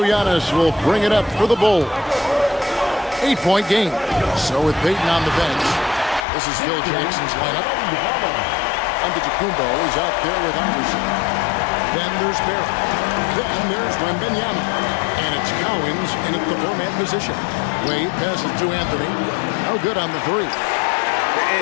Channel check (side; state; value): right; drops out; at 6.2 s